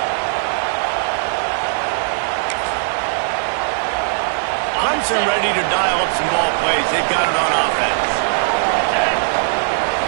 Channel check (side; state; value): left; silent; 59 dB below the other